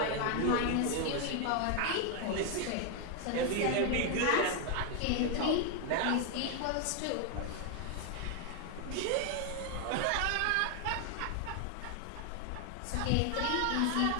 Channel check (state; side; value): different; both; correlation 0.01